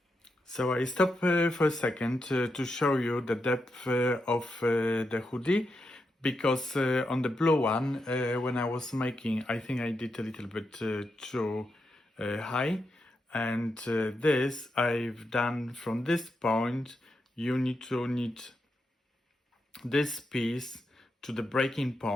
So I stop for a second to show you the depth of the hoodie, because on the blue one, when I was making, I think I did a little bit too high, and this I've done from this point. You need to knit this piece to the breaking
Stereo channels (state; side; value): normal; both; correlation 0.85